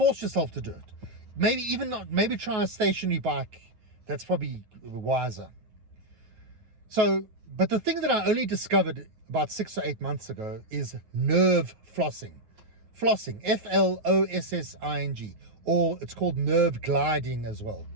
yourself to do it. Maybe even not, maybe try a stationary bike. That's probably wiser. So, but the thing that I only discovered about 6 or 8 months ago is nerve flossing. Flossing, Flossing, or it's called nerve gliding as well.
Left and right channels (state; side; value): late; left; 9.1 ms